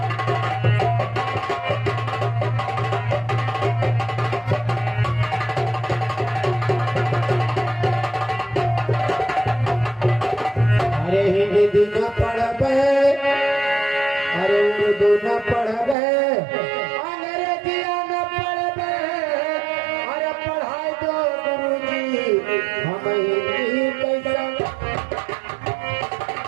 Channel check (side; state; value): left; drops out; at 16.0 s